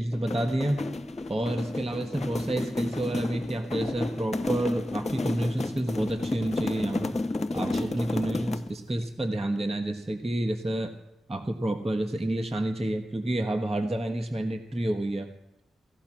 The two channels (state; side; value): normal; both; correlation 0.93